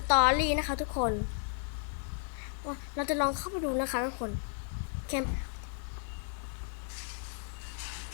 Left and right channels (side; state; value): right; silent; 55 dB below the other